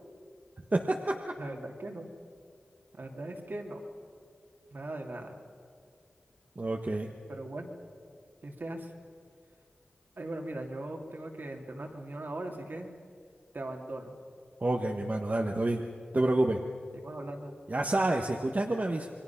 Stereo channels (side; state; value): both; normal; correlation 0.95